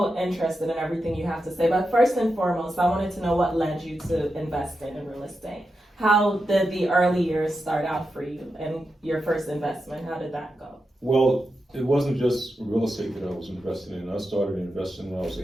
interested in everything you have to say. But first and foremost, I wanted to know what led you to investing in real estate. How did the early years start out for you and your first investment? How did that go? Well, it wasn't just real estate that I was invested in. I started investing when I was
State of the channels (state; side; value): normal; both; correlation 0.88